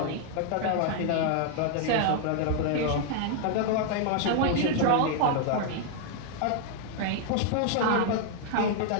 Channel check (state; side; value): different; both; correlation 0.00